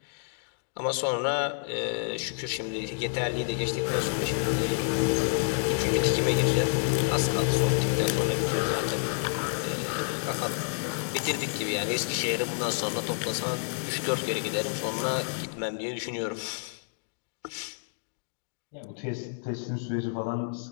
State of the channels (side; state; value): right; silent; digital silence